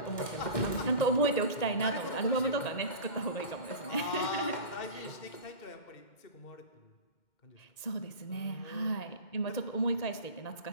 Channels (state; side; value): late; right; 2.1 ms